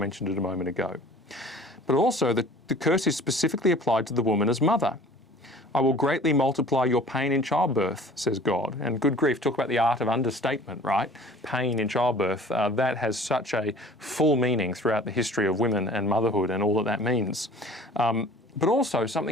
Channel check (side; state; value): both; normal; correlation 0.47